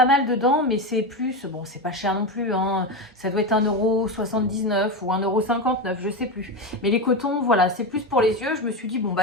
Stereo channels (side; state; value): both; normal; correlation 0.16